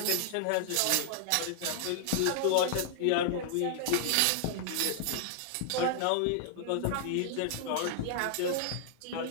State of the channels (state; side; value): different; both; correlation -0.01